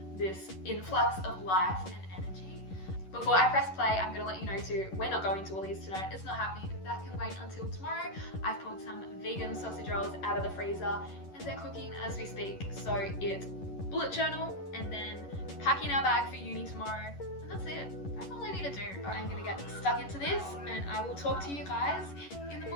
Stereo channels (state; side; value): late; right; 11 ms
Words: this influx of life and energy. Before I press play, I'm going to let you know too, we're not going to Woolies tonight. It's not happening. That can wait until tomorrow. I've pulled some vegan sausage rolls out of the freezer and they're cooking as we speak. So it's bullet journal and then packing our bag for uni tomorrow. And that's it. That's all I need to do. I'm going to get stuck into this and I will talk to you guys in the